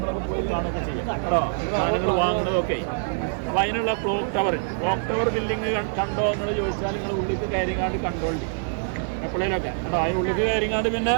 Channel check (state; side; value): silent; left; 58 dB below the other